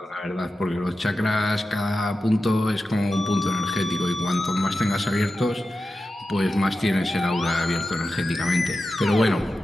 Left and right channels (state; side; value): normal; both; correlation 0.92